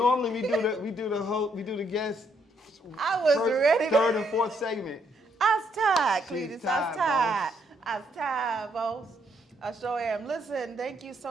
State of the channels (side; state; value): both; normal; correlation 0.73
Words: we do the guest. I was ready. Third and fourth segment. I was tired, She's Cletus. I was tired. I was tired, boss. I sure am. Listen, thank you